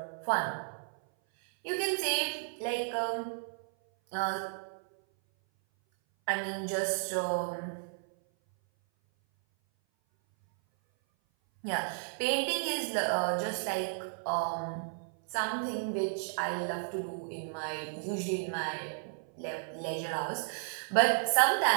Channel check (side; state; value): left; silent; 56 dB below the other